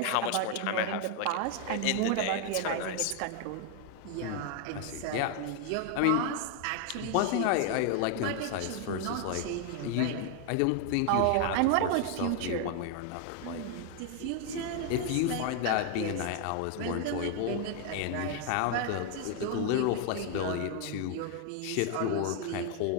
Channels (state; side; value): different; both; correlation 0.01